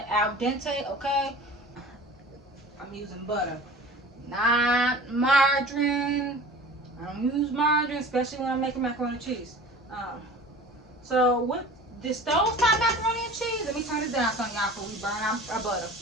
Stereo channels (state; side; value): normal; both; correlation 0.40